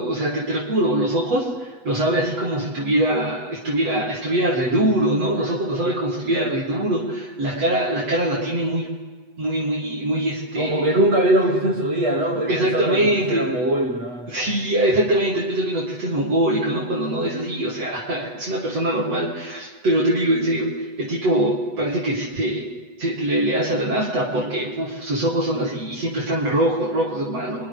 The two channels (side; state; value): left; late; 8.1 ms